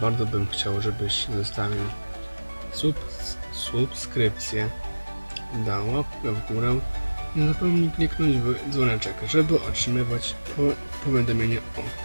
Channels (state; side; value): inverted; both; correlation -1.00